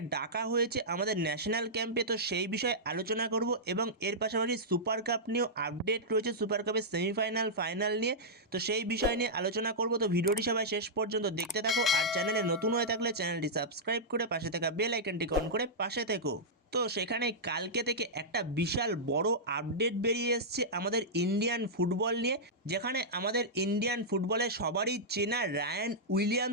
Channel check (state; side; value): normal; both; correlation -0.10